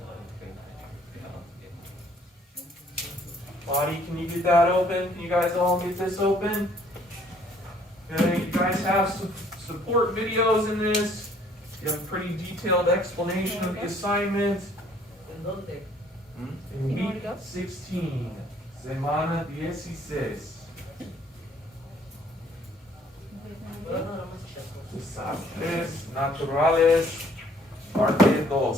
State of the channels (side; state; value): both; normal; correlation 0.61